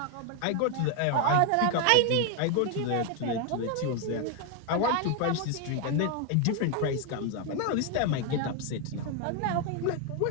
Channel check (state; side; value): different; both; correlation 0.01